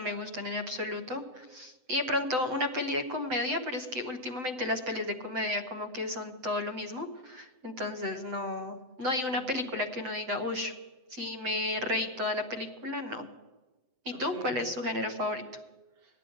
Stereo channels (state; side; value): late; left; 7.8 ms